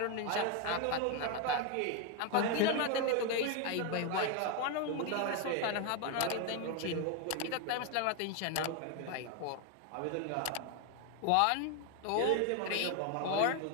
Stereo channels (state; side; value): different; both; correlation 0.01